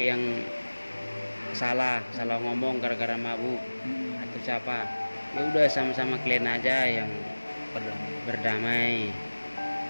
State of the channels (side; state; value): both; inverted; correlation -1.00